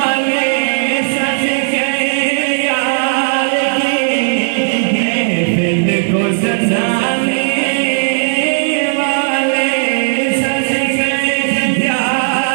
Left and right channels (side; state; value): left; silent; digital silence